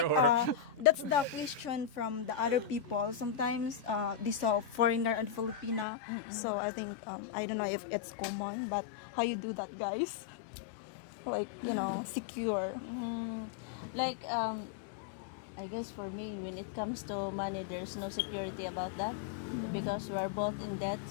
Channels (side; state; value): right; drops out; at 5.9 s